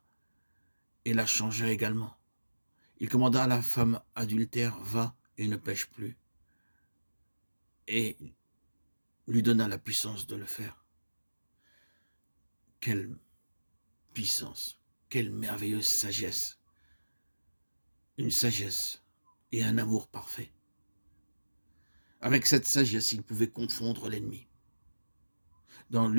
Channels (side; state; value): both; inverted; correlation -1.00